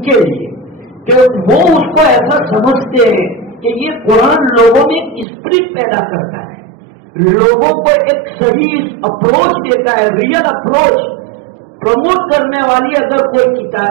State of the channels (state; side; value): drops out; left; at 5.2 s